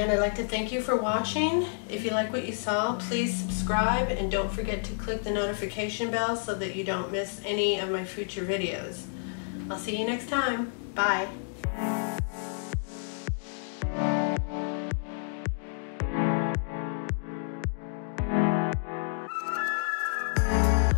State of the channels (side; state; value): right; silent; digital silence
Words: I'd like to thank you for watching. If you like what you saw, please subscribe, and don't forget to click the notification bell so that you don't miss any of my future videos. I'll see you next time. Bye.